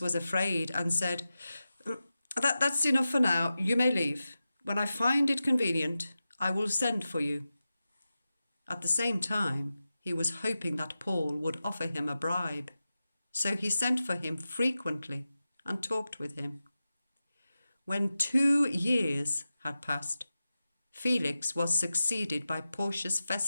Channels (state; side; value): inverted; both; correlation -0.93